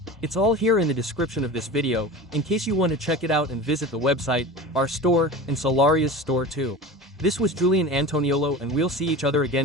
It's all here in the description of this video, in case you want to check it out and visit the website, our store, and Solaria's store too. This was Julian Antoniolo and we'll see each other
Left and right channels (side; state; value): both; normal; correlation 0.32